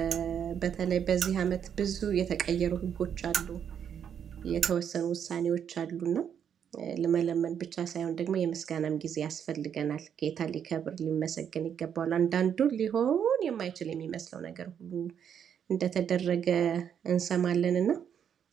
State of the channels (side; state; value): left; quieter; 8.3 dB